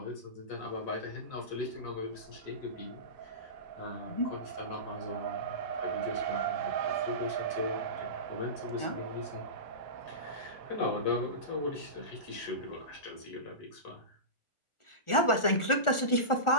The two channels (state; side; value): late; right; 1.4 ms